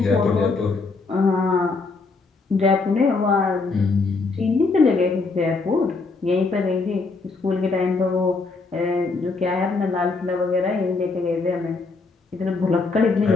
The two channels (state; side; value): quieter; right; 4.0 dB